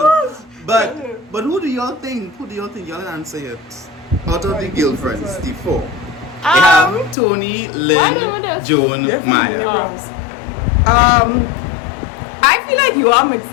But who do y'all think? Who do y'all think? Y'all answer it. Out of the girlfriends, the four. They have Tony, Lynn, Joan, Maya. I feel like you are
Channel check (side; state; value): right; drops out; at 7.2 s